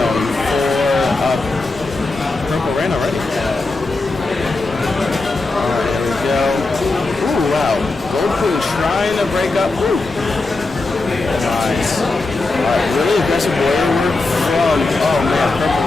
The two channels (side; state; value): right; quieter; 3.4 dB